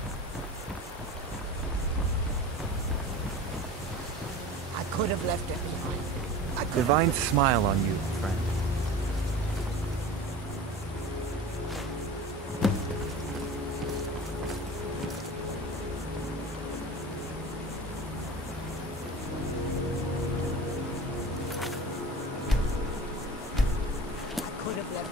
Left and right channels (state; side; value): normal; both; correlation 0.35